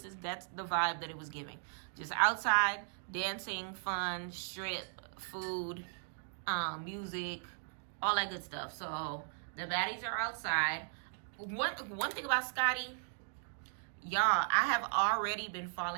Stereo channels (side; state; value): left; silent; digital silence